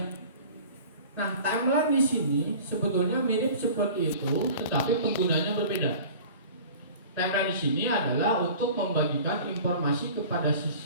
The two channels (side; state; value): both; inverted; correlation -0.42